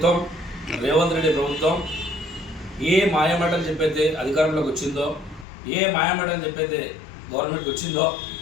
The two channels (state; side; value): drops out; right; at 5.5 s